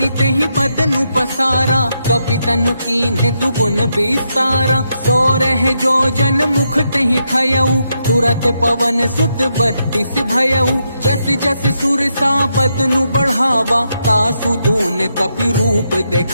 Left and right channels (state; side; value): inverted; both; correlation -0.81